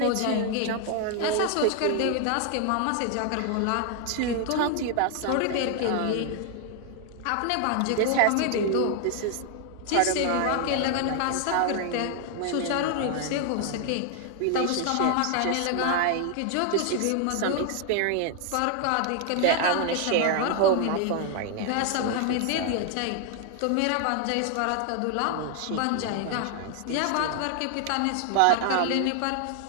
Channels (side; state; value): both; different; correlation 0.00